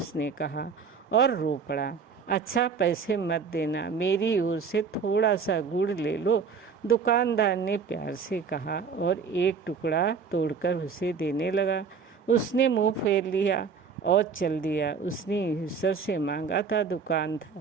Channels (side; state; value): left; quieter; 5.7 dB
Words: कहा और रो पड़ा। अच्छा, पैसे मत देना, मेरी ओर से थोड़ा सा गुड़ ले लो, दुकानदार ने प्यार से कहा और एक टुकड़ा तोड़कर उसे देने लगा। उसने मुंह फेर लिया और चल दिया। उसने ईश्वर से मांगा था,